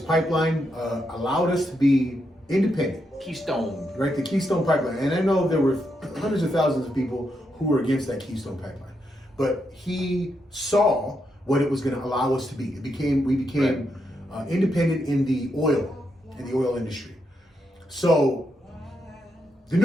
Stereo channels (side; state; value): both; normal; correlation 0.82